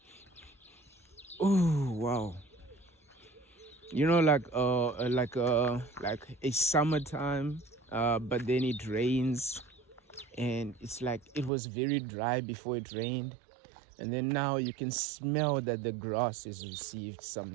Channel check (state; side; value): drops out; left; at 11.5 s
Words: Oh wow, like a summertime, but then it rains, and it's like it was very dry before it rained, and then now you can smell that the grass has received